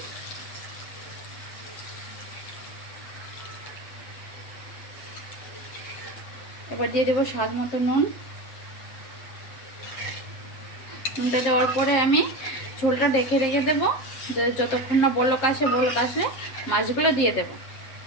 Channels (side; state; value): right; late; 7.5 ms